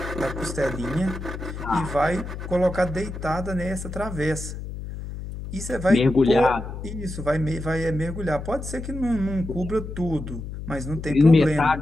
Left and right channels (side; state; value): left; noise; hum, 8 dB below the sound